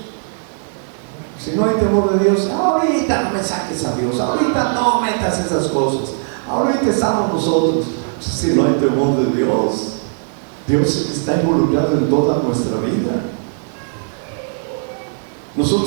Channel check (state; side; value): silent; left; digital silence